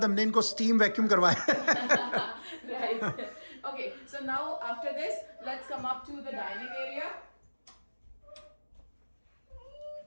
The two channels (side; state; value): both; inverted; correlation -1.00